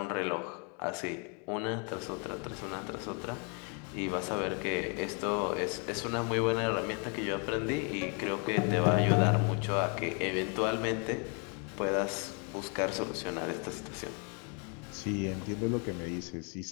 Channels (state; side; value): quieter; right; 36.6 dB